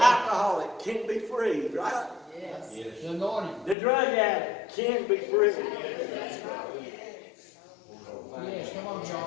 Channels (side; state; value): right; drops out; at 3.8 s